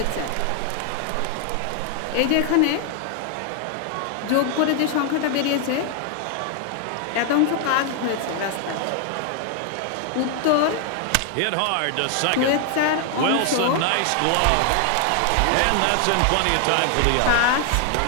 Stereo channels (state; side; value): different; both; correlation 0.00